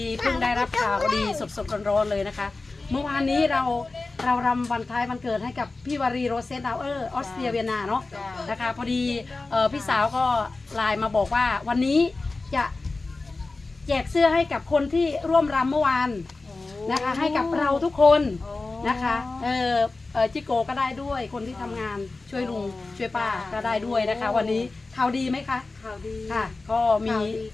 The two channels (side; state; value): right; quieter; 3.5 dB